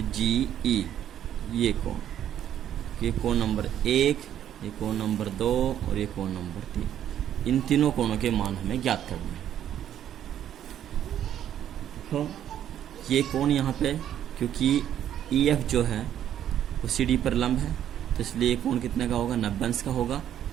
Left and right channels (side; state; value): left; quieter; 10.6 dB